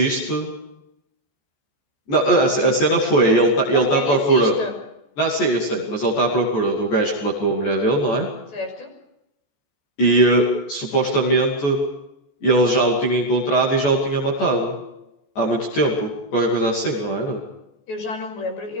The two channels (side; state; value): right; late; 14 ms